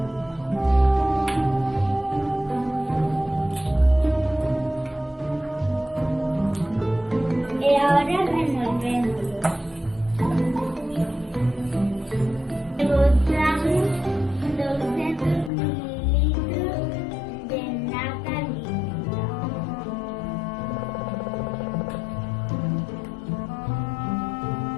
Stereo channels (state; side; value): drops out; right; at 15.5 s